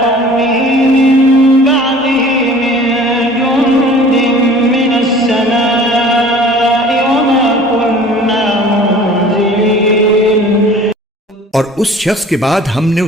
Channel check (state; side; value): normal; both; correlation 0.47